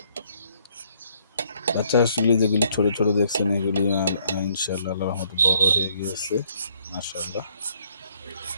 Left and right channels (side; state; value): both; inverted; correlation -0.66